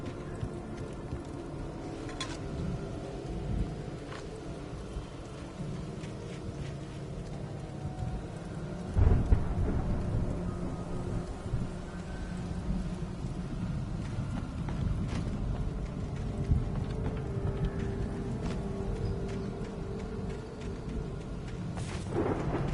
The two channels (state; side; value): identical; both; correlation 1.00